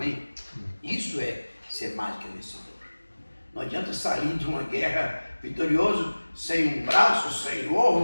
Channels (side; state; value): both; inverted; correlation -1.00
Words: Isso é ser mais que vencedor. Não adianta sair de uma guerra vitorioso sem um braço, sem